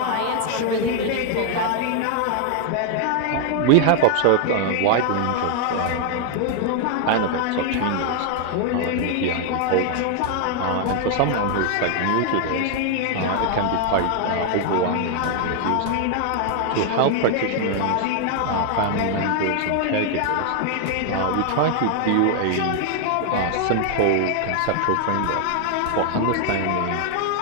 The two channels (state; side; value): different; both; correlation 0.00